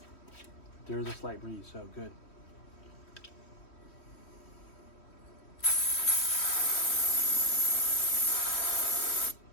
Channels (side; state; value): right; late; 3.1 ms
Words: There is a slight breeze, so good.